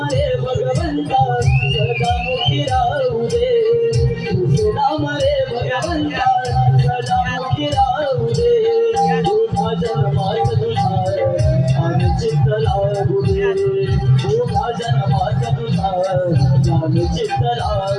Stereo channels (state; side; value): identical; both; correlation 1.00